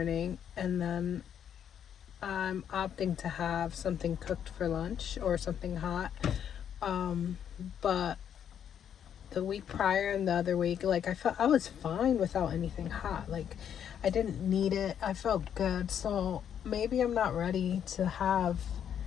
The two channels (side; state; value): right; quieter; 8.9 dB